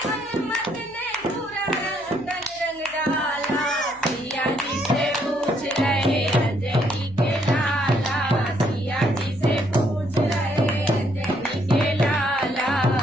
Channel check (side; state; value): left; noise; hum, 28 dB below the sound